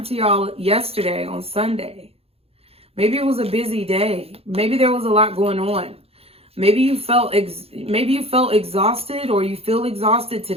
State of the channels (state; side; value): late; left; 0.29 ms